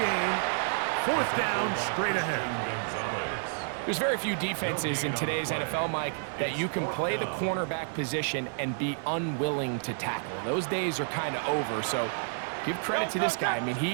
gain. 4th down, straight ahead. There's very few defenses in today's NFL, Mike, that you can play the cornerback position and be unwilling to tackle. Those days are kind of over, so give credit to this guy. I mean,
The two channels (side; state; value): left; silent; 58 dB below the other